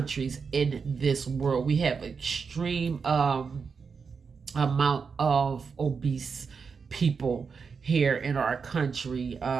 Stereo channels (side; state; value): left; quieter; 5.6 dB